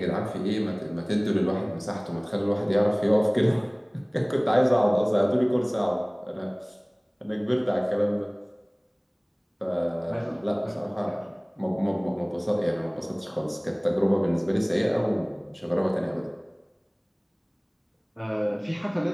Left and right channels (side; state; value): both; identical; correlation 1.00